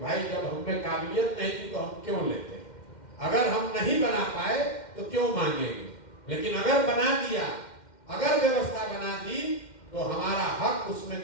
जब हमें काबिलियत नहीं थी तो हम क्यों लेते। अगर हम नहीं बना पाए तो क्यों मांगेंगे, लेकिन अगर बना दिया, अगर व्यवस्था बना दी तो हमारा हक उसमें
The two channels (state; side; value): late; right; 2.1 ms